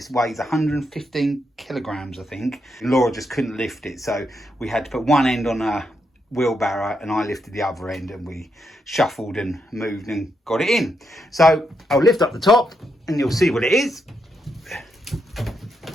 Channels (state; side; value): normal; both; correlation 0.81